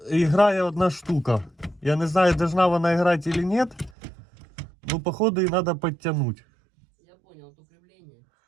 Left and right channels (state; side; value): drops out; left; at 4.0 s